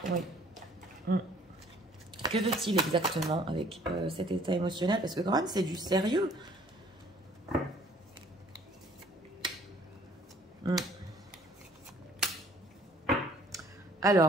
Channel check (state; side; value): normal; both; correlation 0.57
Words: Oui. Que veut-il exactement avec cet état émotionnel? Parce que quand même, c'est du sérieux.